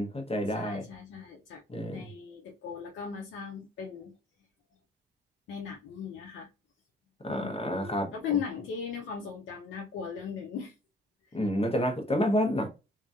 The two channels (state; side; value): normal; both; correlation 0.57